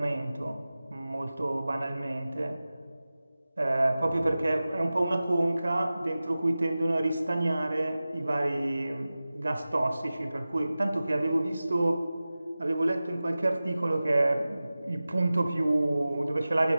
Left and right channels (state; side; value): inverted; both; correlation -0.96